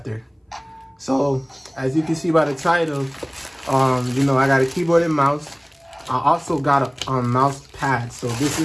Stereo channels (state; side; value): identical; both; correlation 1.00